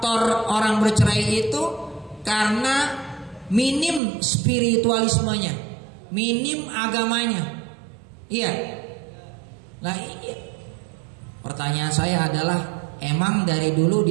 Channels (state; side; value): drops out; left; at 4.0 s